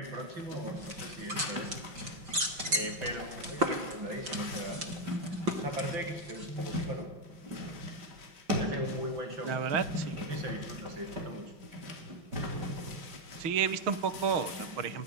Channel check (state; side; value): late; left; 5.8 ms